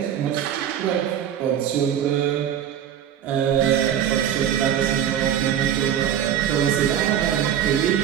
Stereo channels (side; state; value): left; quieter; 9.9 dB